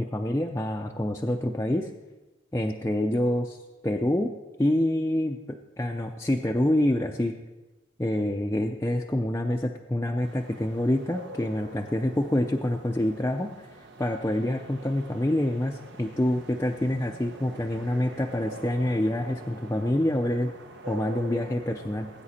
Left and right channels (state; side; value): normal; both; correlation 0.89